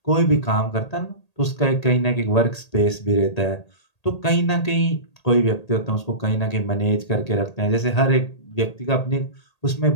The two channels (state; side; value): late; right; 1.8 ms